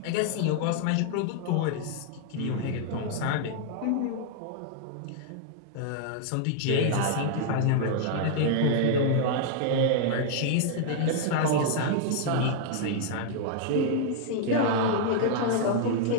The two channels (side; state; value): both; different; correlation 0.00